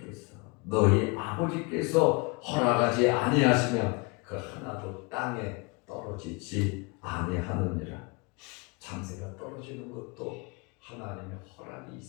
아버지께서 허락하지 아니하시면 그 하나도 땅에 떨어지지 아니하느니라. 참새가 떨어지는 것도 하나님의 허락이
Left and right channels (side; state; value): right; quieter; 28.4 dB